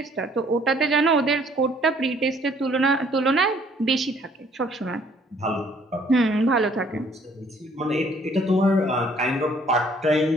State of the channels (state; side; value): normal; both; correlation 0.61